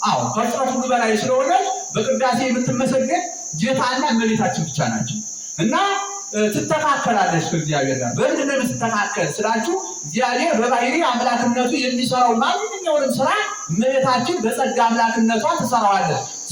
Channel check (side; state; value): both; identical; correlation 1.00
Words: አዎ ከፍጥረት ሁሉ በላይ ስለሆነ በቅዳሴ የምትመሰገን ጌታና እመቤታችን ብቻ ናቸው እና ትተካከላለች ከእግዚአብሔር ጋር። በምንድን ነው የምትተካከል ስላችሁ እግዚአብሔር በባህሪ አምላክነቱ የሚሰራው ማንኛውንም ስራ እመቤታችን በጸጋ አምላክነቷ ትሰራዋለች።